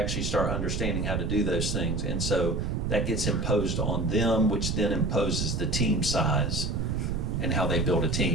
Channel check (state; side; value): noise; right; rumble, 1 dB below the sound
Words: start understanding how to do those things. And so that gets imposed on them, which then imposes the team size and how they build a